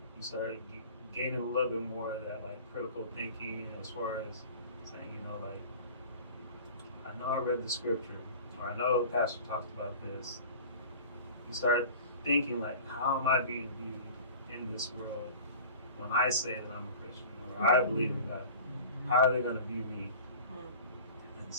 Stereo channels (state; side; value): inverted; both; correlation -0.40